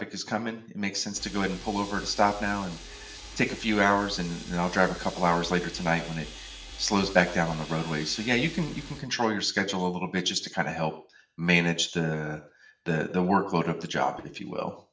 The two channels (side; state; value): both; identical; correlation 1.00